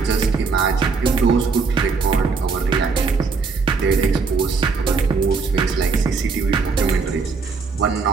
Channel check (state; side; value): quieter; left; 4.7 dB